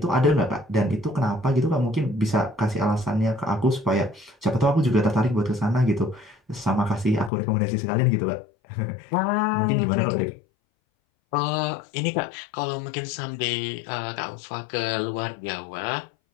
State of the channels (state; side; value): drops out; right; at 7.3 s